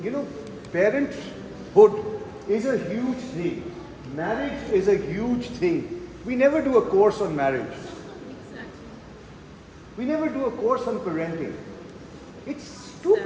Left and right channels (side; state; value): both; identical; correlation 1.00